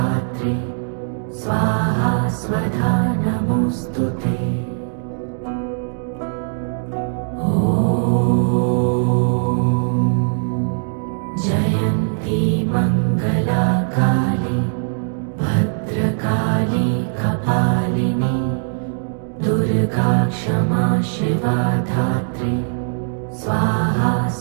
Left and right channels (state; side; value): silent; left; digital silence